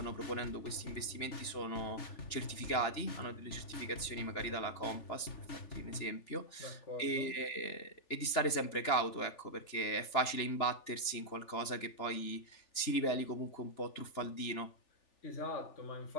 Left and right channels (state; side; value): late; right; 3.4 ms